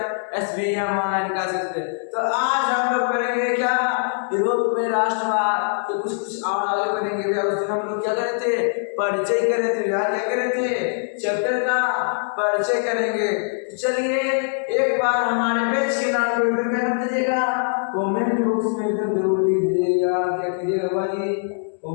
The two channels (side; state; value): right; silent; digital silence